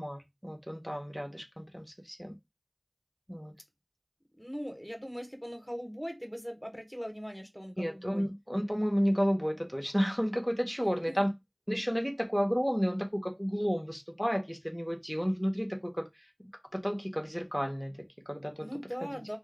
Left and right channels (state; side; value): identical; both; correlation 1.00